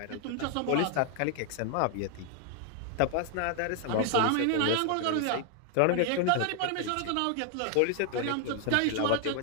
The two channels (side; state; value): both; different; correlation 0.00